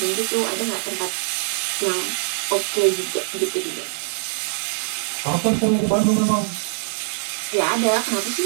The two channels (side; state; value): left; silent; digital silence